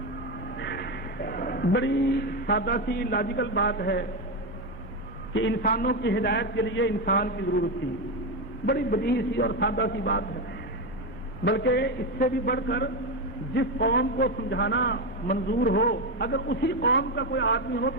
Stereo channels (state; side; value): normal; both; correlation 0.11